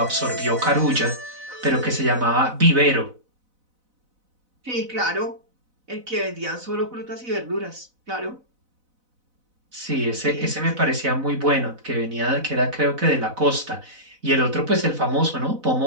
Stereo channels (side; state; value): left; late; 4.0 ms